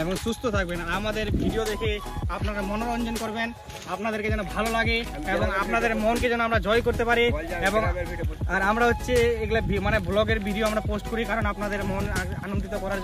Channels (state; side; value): identical; both; correlation 1.00